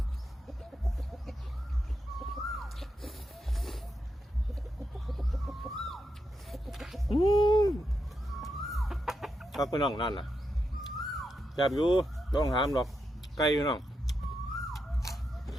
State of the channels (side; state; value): both; normal; correlation 0.84